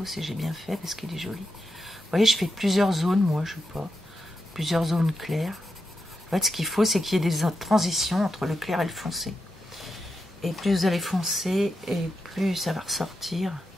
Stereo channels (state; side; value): normal; both; correlation 0.87